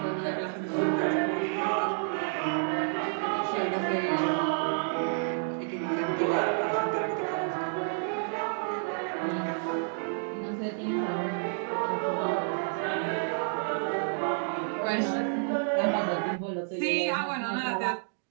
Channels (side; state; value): left; silent; digital silence